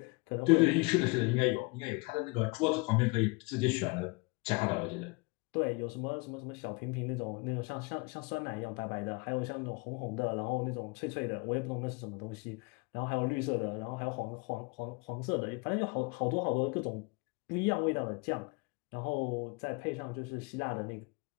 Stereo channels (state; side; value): quieter; right; 28.5 dB